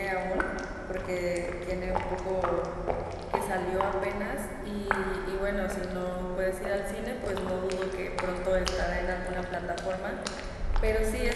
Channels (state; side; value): identical; both; correlation 1.00